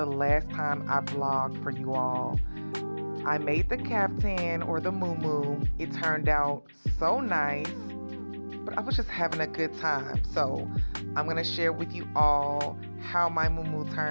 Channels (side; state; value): both; inverted; correlation -1.00